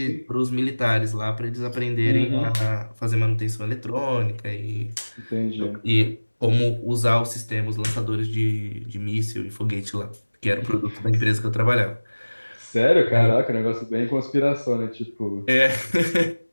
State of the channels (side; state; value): both; inverted; correlation -1.00